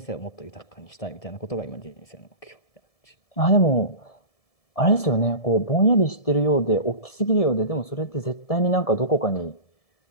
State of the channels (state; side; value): late; right; 1.7 ms